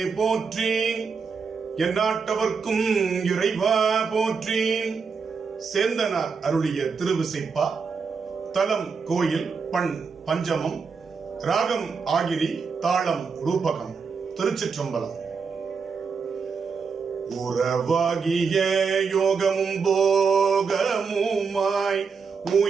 போற்றி, எந்நாட்டவர்க்கும் இறைவா போற்றி. சேந்தனார் அருளிய திருவிசைப்பா. தலம் கோயில், பண் பஞ்சமம், ராகம் ஆகிரி, தாளம் ரூபகம். திருச்சிற்றம்பலம். உறவாகிய யோகமும் போகமுமாய்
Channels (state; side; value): quieter; left; 5.4 dB